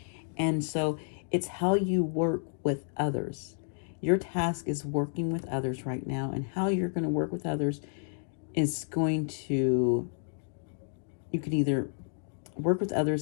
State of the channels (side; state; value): right; silent; digital silence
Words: And so it's how you work with others. Your task is working with others right now. And how you're going to work with others is going to, you could either work with